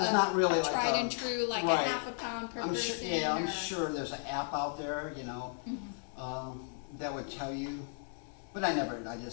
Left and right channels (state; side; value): silent; right; 55 dB below the other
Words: not really like tried a- and true like right. a half a pound per I'm sure, person. yeah, I'm or- sure there's an app out there, you know, that would tell you. But I